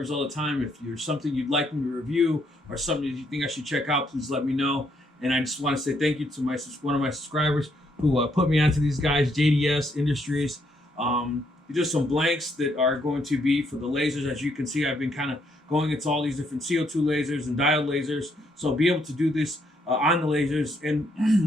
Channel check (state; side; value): normal; both; correlation 0.73